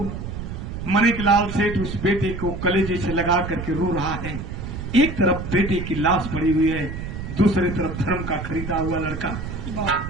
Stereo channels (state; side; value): noise; right; rumble, 7 dB below the sound